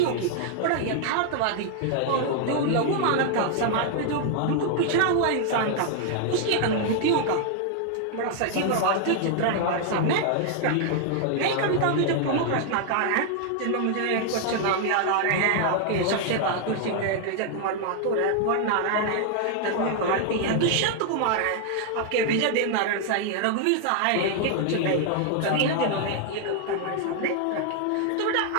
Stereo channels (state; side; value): different; both; correlation 0.00